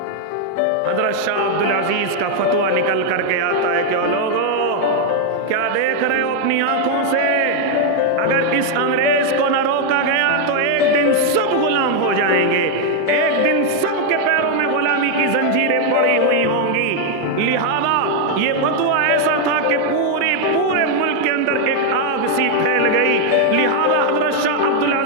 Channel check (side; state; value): both; different; correlation 0.01